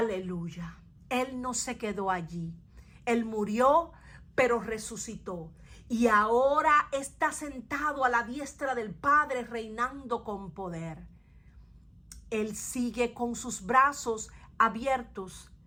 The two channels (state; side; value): identical; both; correlation 1.00